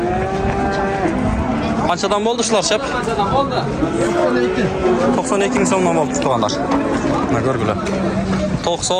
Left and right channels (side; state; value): both; identical; correlation 1.00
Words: Qanchadan bo'ldi shular shep? 92 ming so'mdan bo'ldi turganlar. Mana ko'rgular.